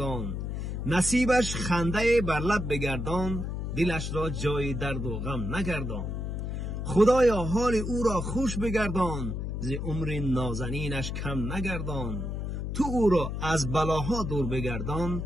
نصیبش خنده بر لب بگردان، دلش را جای درد و غم نگردان. خدایا حال او را خوش بگردان، ز عمر نازنینش کم نگردان. تو او را از بلاها دور بگردان،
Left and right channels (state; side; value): noise; left; hum, 3 dB below the sound